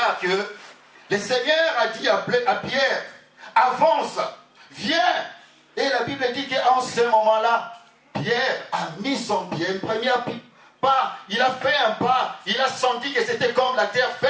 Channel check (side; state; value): both; identical; correlation 1.00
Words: que le Seigneur a dit à Pierre, avance, viens. Et la Bible dit qu'en ce moment-là, Pierre a mis son pied, un premier pas, il a fait un pas, il a senti que c'était comme la terre